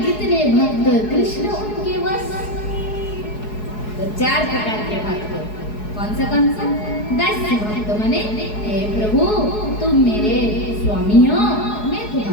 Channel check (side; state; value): right; late; 4.7 ms